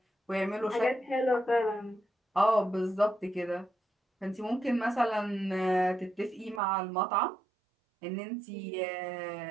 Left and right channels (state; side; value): drops out; left; at 6.6 s